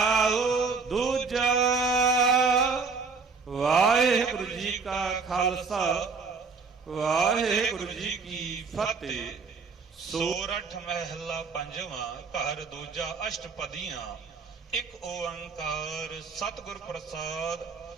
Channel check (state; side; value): quieter; left; 4.8 dB